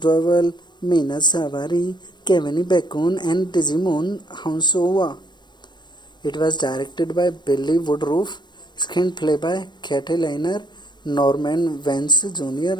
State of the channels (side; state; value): right; late; 0.22 ms